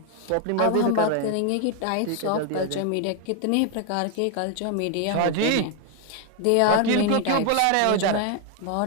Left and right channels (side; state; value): both; different; correlation 0.01